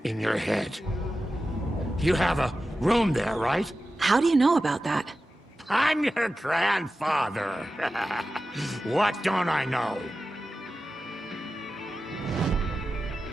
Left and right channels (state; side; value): normal; both; correlation 0.93